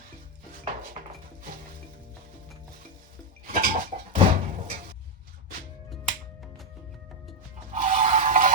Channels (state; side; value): normal; both; correlation 0.03